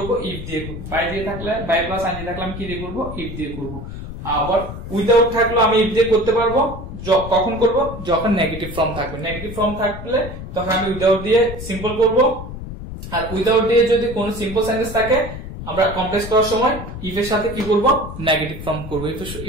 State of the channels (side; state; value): left; noise; rumble, 10 dB below the sound